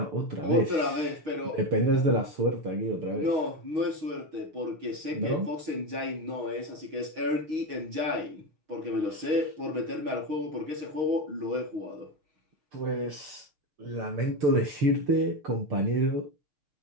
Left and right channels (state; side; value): late; left; 6.4 ms